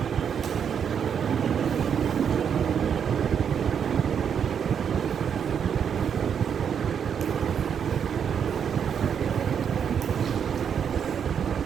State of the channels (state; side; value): quieter; left; 7.7 dB